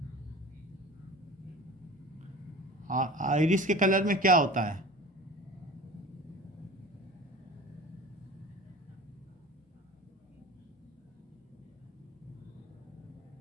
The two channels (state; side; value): normal; both; correlation 0.38